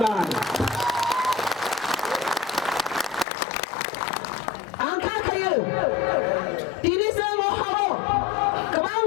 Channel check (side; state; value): right; drops out; at 3.2 s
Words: angka khayo tini samo haro kabang